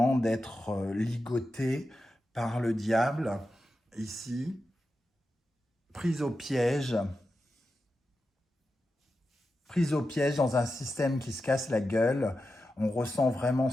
d'être ligoté par le diable, ici, pris au piège, prise au piège dans un système qui se casse la gueule. On ressent vraiment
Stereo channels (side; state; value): both; normal; correlation 0.90